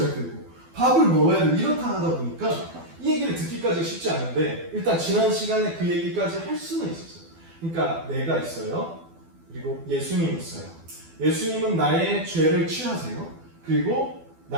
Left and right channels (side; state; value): left; late; 12 ms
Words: 되고, 밥을 먹어야 되고, 이렇다 하다 보니까 이 얘기를 듣기까지 쉽지 않은데, 일단 지난 시간에 그 얘기까지 할 수는 있었어요. 그러니까 내가 있어요. 그리고 예수님 있어요. 예수님은 나의 죄를 취하세요. 그리고